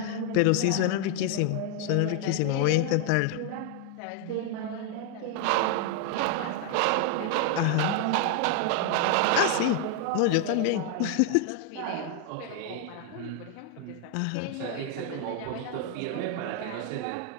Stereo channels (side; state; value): both; different; correlation 0.00